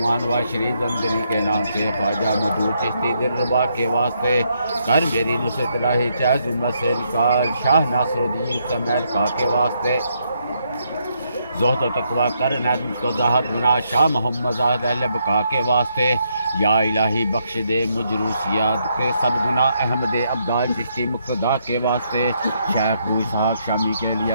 و شریف زندگی کے نام سے خواجہ مدعو چشتی دلربا کے واسطے، کر میری نصرت الہی چاہے ظلمت سے نکال، شاہ ناصر الدین سمیل کا کے واسطے، زہد و تقویٰ کر عنایت مجھ کو زاہد بنا، شاہ محمد زاہد اہل بقا کے واسطے، یا الہی بخش دے مجھ روسیات کے سب گناہ احمد عبدال چشتی مقتدا کے واسطے، شیخ ابو اسحاق شامی کے لیے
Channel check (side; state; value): both; inverted; correlation -0.76